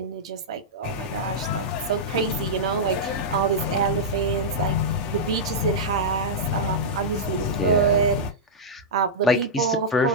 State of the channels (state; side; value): normal; both; correlation -0.08